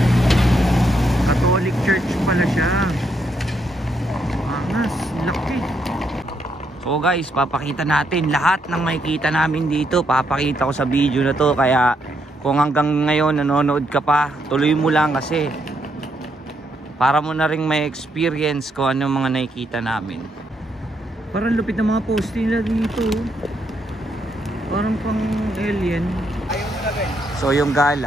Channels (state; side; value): normal; both; correlation 0.76